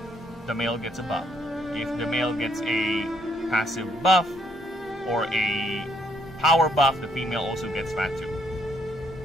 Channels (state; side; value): normal; both; correlation 0.70